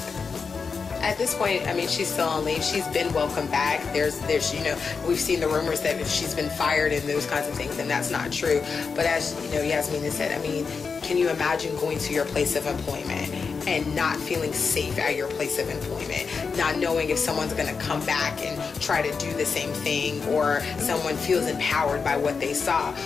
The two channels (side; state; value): right; quieter; 5.2 dB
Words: At this point, I mean, she's still on leave. She's been welcomed back. There's, you know, we've seen the rumors that if she's been fired and those kinds of things, and that's not true. But as, you know, Yasmine has said, I mean, can you imagine going to your place of employment and not feeling safe at your place of employment, not knowing if someone's going to come back and try to do the same thing, or someone feels empowered by what they saw?